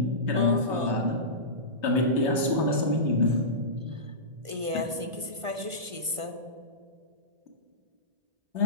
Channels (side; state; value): left; late; 1.5 ms